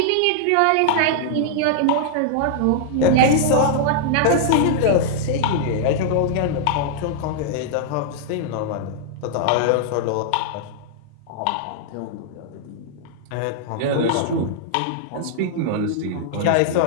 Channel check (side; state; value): both; different; correlation -0.01